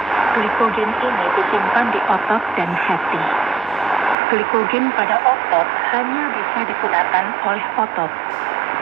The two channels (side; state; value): left; drops out; at 4.2 s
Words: Glikogen ini disimpan di otot dan hati. Glikogen pada otot hanya bisa digunakan oleh otot,